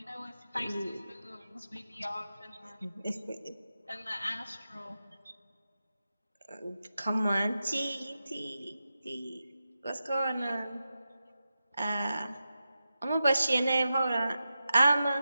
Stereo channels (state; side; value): inverted; both; correlation -0.91